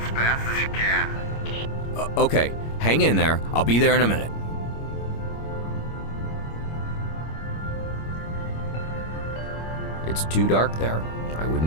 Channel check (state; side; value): late; right; 25 ms